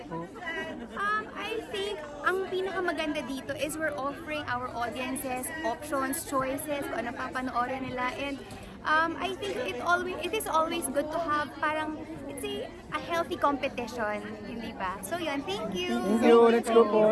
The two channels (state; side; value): identical; both; correlation 1.00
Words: po? I think ang pinakamaganda dito is we're offering our audiences options, choices, kung ano papanoorin nila. And I think it is always good to have parang, it's a healthy competition, hindi ba? So yun, thank you! Thank you, let's go po.